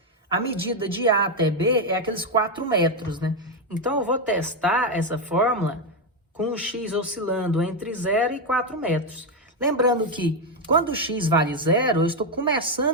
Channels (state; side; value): normal; both; correlation 0.06